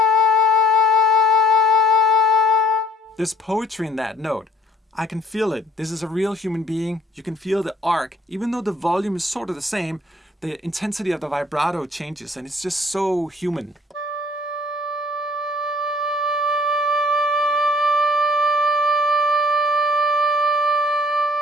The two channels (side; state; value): both; normal; correlation 0.57